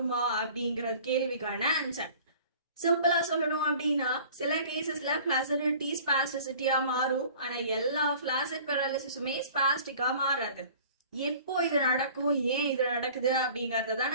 அப்படிங்கிற கேள்விக்கான ஆன்சர். சிம்பிளா சொல்லணும் அப்படின்னா சில கேசஸ்ல ஃபிளாசிடிட்டி ஸ்பாஸ்டிசிட்டியா மாறும். ஆனா எல்லா ஃபிளாசிட் பேரலிசிஸுமே ஸ்பாஸ்டிக்கா மாறாது. எப்போ இது நடக்கும், ஏன் இது நடக்குது அப்படிங்கறத தான்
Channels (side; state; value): both; inverted; correlation -0.47